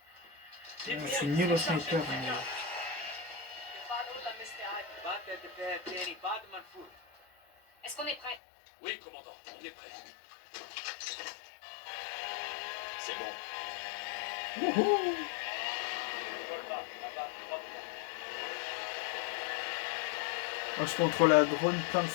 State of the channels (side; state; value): right; drops out; at 8.4 s